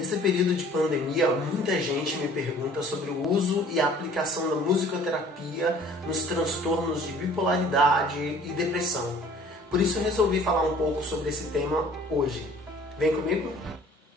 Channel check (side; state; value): both; normal; correlation 0.52